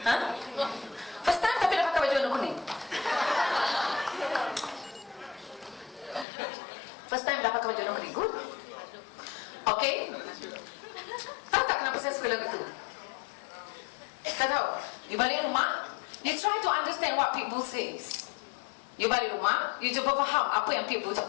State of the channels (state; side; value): drops out; right; at 6.2 s